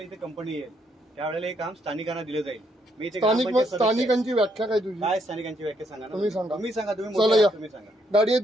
इथे कंपनी येईल त्यावेळेला हे काम स्थानिकांना दिलं जाईल. मी स्थानिकांची व्याख्या काय तुझी? काय स्थानिकांची व्याख्या सांगा ना. तुम्ही सांगा. तुम्ही सांगा. तुम्ही सांगा. गाडी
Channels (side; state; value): both; normal; correlation 0.73